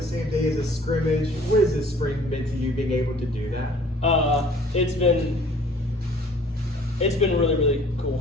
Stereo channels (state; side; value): normal; both; correlation 0.53